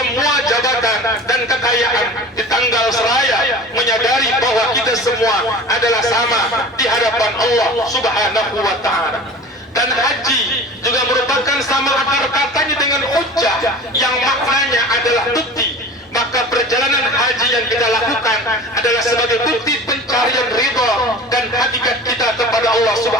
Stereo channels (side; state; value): both; normal; correlation 0.38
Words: jabatan dan kekayaan di tanggal seraya menyadari bahwa kita semua adalah sama di hadapan Allah Subhanahu wa taala. Dan haji juga merupakan sama akar katanya dengan hujjah yang maknanya adalah bukti. Maka perjalanan haji yang kita lakukan adalah sebagai bukti pencarian ridha dan hakikat kita kepada Allah